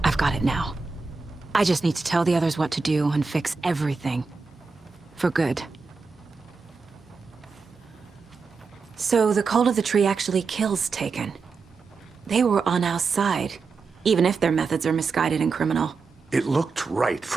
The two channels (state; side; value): quieter; left; 4.6 dB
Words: I've got it now. I just need to tell the others what to do and fix everything. For good. So the Cult of the Tree actually kills Taken. They were on our side. Even if their methods are misguided and criminal. It looked right